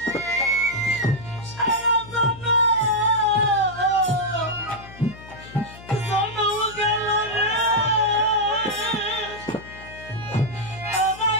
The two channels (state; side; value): noise; left; hum, 18 dB below the sound